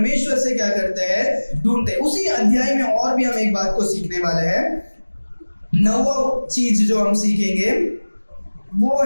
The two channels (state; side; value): inverted; both; correlation -1.00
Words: से क्या करते हैं, ढूंढते हैं। उसी अध्याय में और भी हम एक बात को सीखने वाले हैं। 9वां चीज जो हम सीखेंगे वो